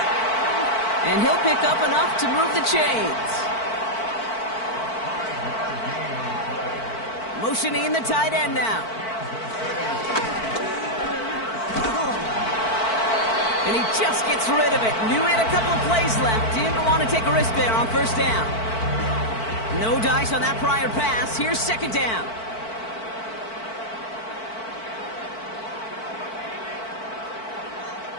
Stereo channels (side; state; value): right; late; 4.5 ms